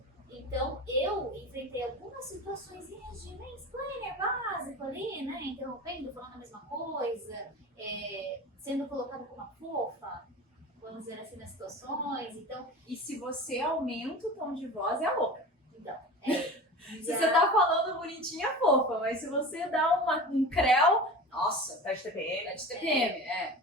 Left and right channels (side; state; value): both; normal; correlation 0.34